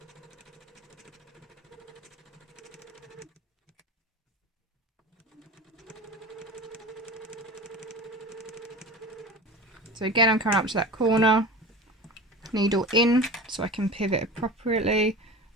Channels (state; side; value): normal; both; correlation 0.34